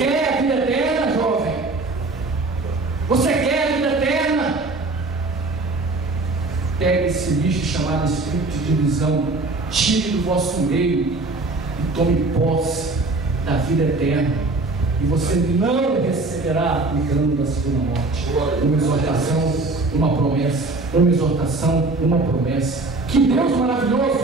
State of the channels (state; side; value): quieter; left; 3.3 dB